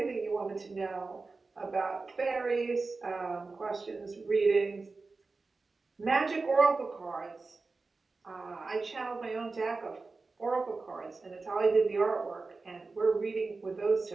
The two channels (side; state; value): left; quieter; 3.9 dB